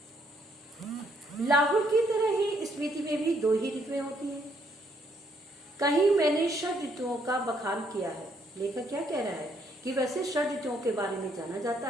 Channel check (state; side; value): normal; both; correlation 0.70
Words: लाहुल की तरह ही स्पीति में भी 2 ही ऋतुएं होती हैं। कहीं मैंने 6 ऋतुओं का बखान किया है। लेखक क्या कह रहा है कि वैसे 6 ऋतुओं के बारे में जाना जाता